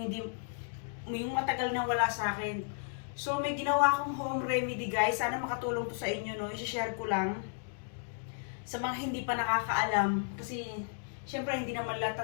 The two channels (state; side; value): silent; right; digital silence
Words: matagal na wala sa akin. So may ginawa akong home remedy guys, sana makatulong to sa inyo, no? I-share ko lang sa mga hindi pa nakakaalam, kasi syempre hindi naman lahat